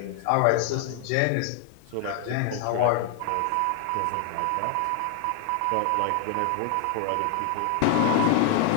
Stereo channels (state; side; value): different; both; correlation 0.00